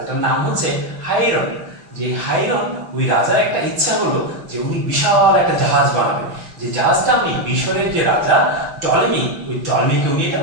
নাম হচ্ছে হাইরন। যে হাইরন, ওই রাজার একটা ইচ্ছা হলো যে উনি বিশাল একটা জাহাজ বানাবেন, যে জাহাজটা উনি মিশরের যে রাজা টলেমি, ওই টলেমিকে উনি এটা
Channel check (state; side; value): late; left; 6.0 ms